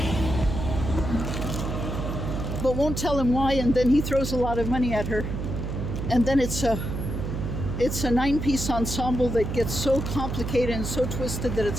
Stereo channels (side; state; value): right; noise; hum, 4 dB below the sound